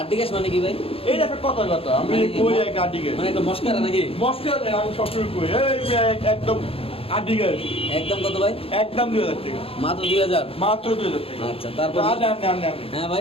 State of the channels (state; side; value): late; right; 0.27 ms